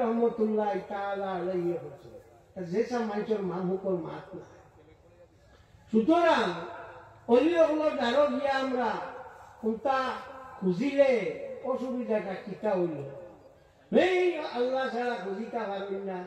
রহমতুল্লাহ তাআলা আলাইহি কইছিল যেসব মানুষের মানুষের মাত না। সুতরাং অলিসকলের দ্বারা গিয়া আমরা কোনটা খুঁজিলে অসুবিধাটা কিতা হইল। এই আল্লাহ ছাড়া খুঁজিতে পারেন না,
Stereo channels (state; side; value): identical; both; correlation 1.00